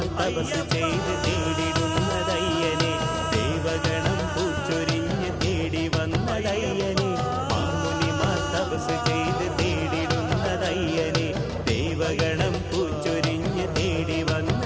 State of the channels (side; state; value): both; identical; correlation 1.00